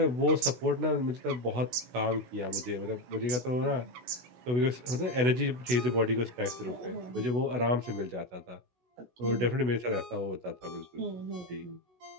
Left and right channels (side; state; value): left; late; 16 ms